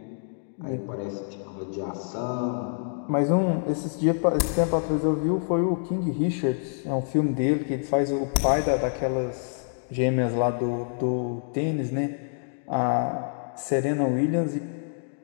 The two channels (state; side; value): silent; right; digital silence